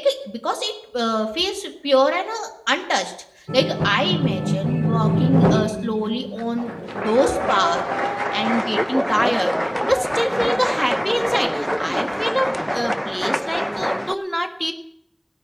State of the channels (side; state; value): both; identical; correlation 1.00